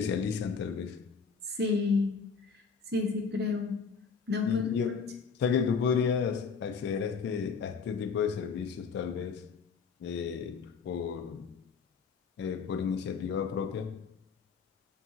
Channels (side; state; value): right; quieter; 5.6 dB